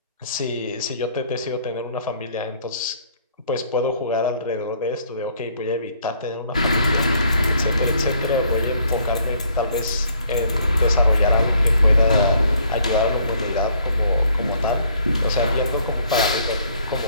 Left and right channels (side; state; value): both; inverted; correlation -0.64